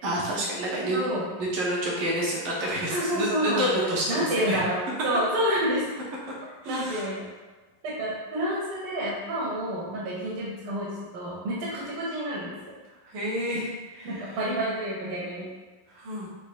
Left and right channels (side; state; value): left; late; 11 ms